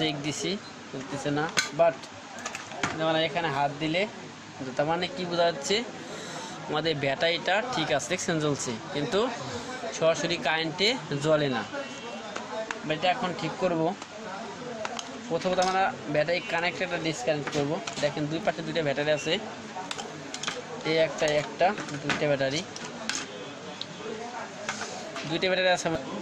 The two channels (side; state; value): both; identical; correlation 1.00